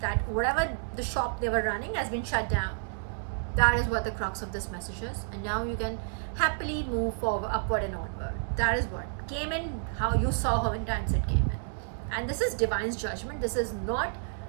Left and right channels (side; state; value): left; silent; digital silence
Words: that, whatever the shop they were running has been shut down. That is what the crux of this message is, and now you can happily move forward, upward and onward. That is what came in, how you saw how many times it came in. And this is Divine's judgment. This is not